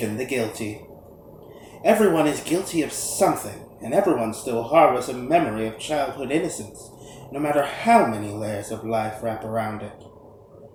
the guilty. Everyone is guilty of something, and everyone still harbors a memory of childhood innocence, no matter how many layers of life wrap around it.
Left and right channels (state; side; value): identical; both; correlation 1.00